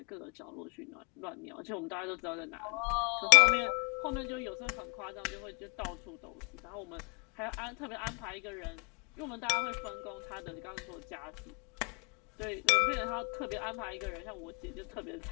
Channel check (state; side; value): quieter; right; 36.5 dB